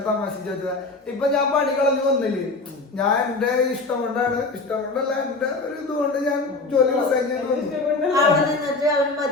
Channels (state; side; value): quieter; right; 3.5 dB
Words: തമാശ ചോദിച്ചതാ. ഇപ്പൊ ഞാൻ പണികളൊന്നും വന്നില്ലേ, ഞാൻ എന്റെ ഇഷ്ടം കൊണ്ടല്ല എന്റെ ഒരു ഇതുകൊണ്ട് ഞാൻ ജോലി റിസൈൻ ചെയ്ത് വന്നു.